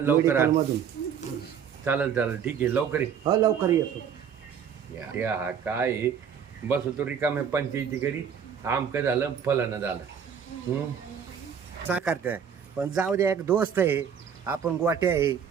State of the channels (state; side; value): quieter; left; 7.6 dB